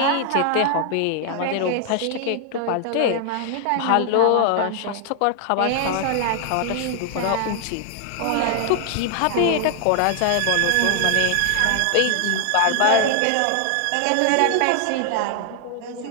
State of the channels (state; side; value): different; both; correlation 0.00